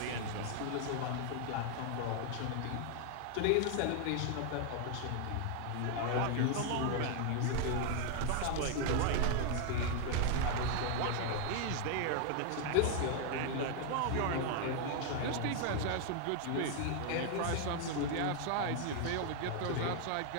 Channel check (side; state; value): both; different; correlation 0.00